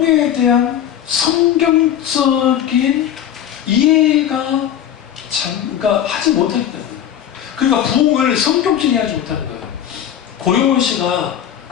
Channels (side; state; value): right; quieter; 10.1 dB